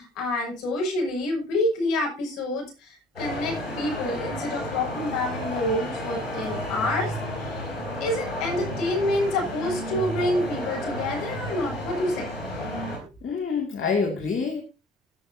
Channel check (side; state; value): both; normal; correlation 0.49